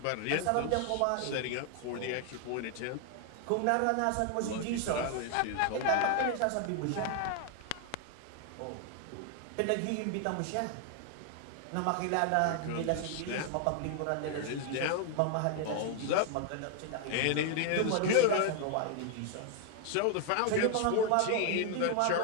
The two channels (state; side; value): different; both; correlation 0.00